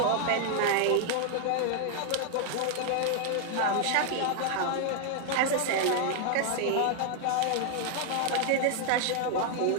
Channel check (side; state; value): both; different; correlation 0.00